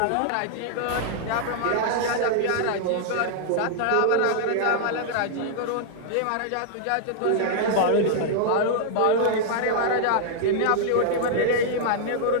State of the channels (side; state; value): both; different; correlation -0.01